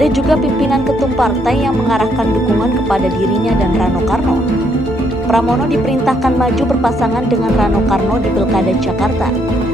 juga pimpinan ketum partai yang mengarahkan dukungan kepada dirinya dan Rano Karno. Pramono diperintahkan maju berpasangan dengan Rano Karno di Pilkada Jakarta.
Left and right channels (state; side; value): normal; both; correlation 0.72